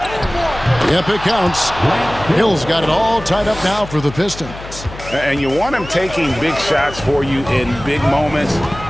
Yep, it counts. Hill's got it all tied up now for the Pistons. And you want him taking big shots for you in big moments.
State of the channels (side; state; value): left; noise; hum, 14 dB below the sound